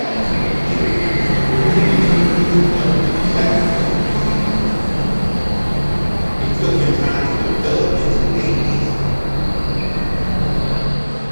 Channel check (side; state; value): both; inverted; correlation -1.00